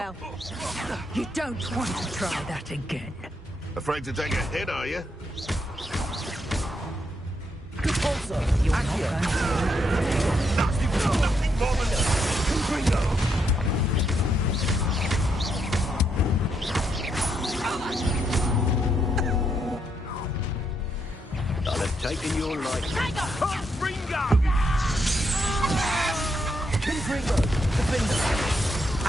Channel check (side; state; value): both; normal; correlation 0.78